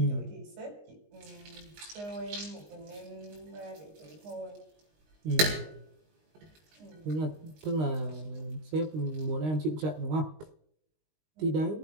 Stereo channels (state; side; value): late; left; 19 ms